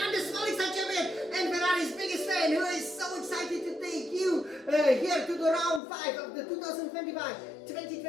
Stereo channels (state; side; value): drops out; right; at 5.8 s